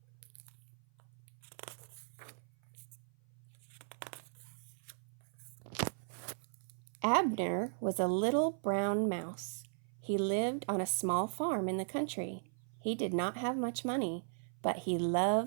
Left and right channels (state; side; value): silent; left; 53 dB below the other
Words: Abner was a little brown mouse. He lived on a small farm in the country. He did not have much money, but he